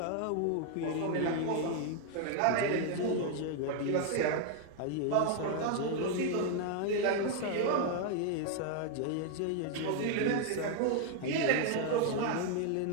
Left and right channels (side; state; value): both; different; correlation 0.00